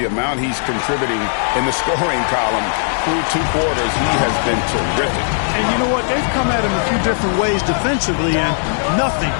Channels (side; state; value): right; silent; digital silence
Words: amount he's contributing in the scoring column through 2 quarters? He has been terrific. And you know what? They've come at him a few different ways defensively, and nothing